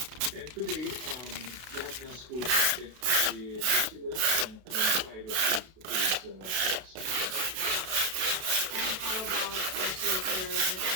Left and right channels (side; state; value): left; late; 32 ms